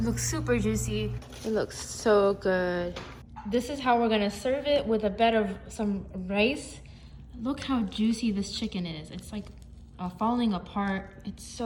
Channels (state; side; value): identical; both; correlation 1.00